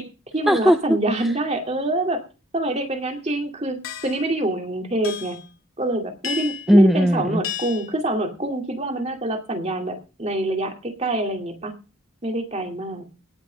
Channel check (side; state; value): both; normal; correlation 0.64